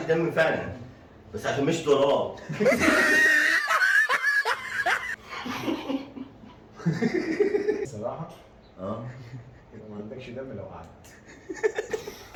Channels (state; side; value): identical; both; correlation 1.00